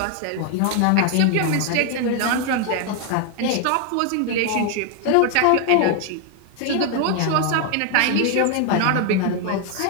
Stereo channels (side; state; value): both; different; correlation 0.00